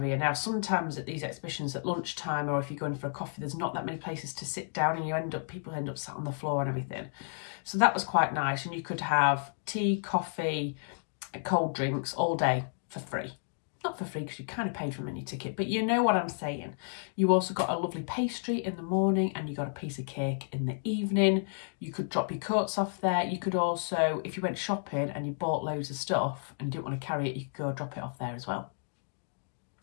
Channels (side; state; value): right; silent; digital silence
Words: Now, sometimes at these exhibitions at lunchtime, or if you're going for a coffee, there's not that many places to sit down, and people end up sat on the floor and everything. So that was quite nice. And you could have tea, coffee, cold drinks all day for free. Not for free because you kind of paid for a mini ticket, but you know what I'm saying. You also got a lovely pastry in the morning, and you got a piece of cake in the evening. You could drop your coats off there. You could also, if you went shopping and you bought loads of stuff and you didn't want to carry it, you could go drop it off there as well.